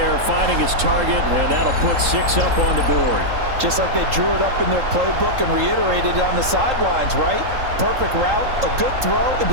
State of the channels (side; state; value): left; late; 3.8 ms